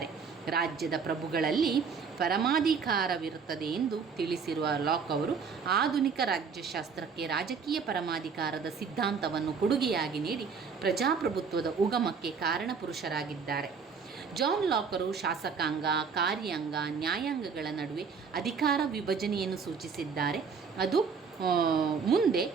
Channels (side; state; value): left; quieter; 5.7 dB